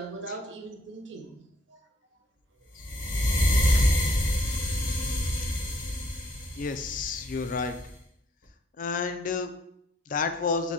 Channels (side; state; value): both; normal; correlation 0.65